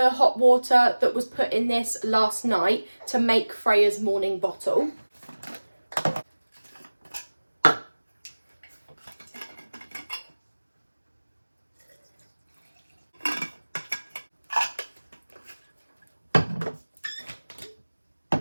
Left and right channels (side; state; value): both; inverted; correlation -1.00